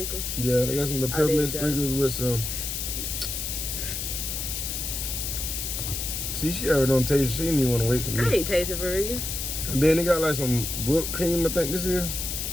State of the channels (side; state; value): left; noise; hiss, 3 dB below the sound